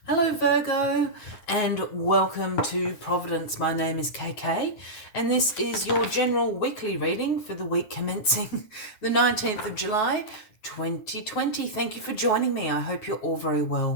Hello Virgo and welcome to Providence. My name is KK and this is your general weekly reading for the week commencing the 19th of July 2020. Thank you for joining me. I hope you're all very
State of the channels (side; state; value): right; late; 9.4 ms